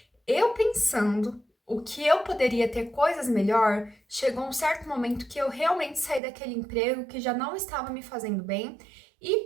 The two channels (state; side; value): drops out; left; at 6.2 s